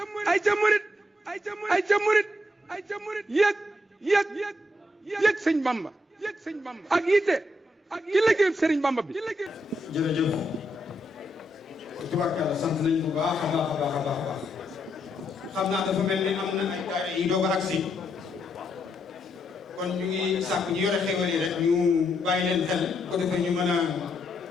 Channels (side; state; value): both; normal; correlation 0.78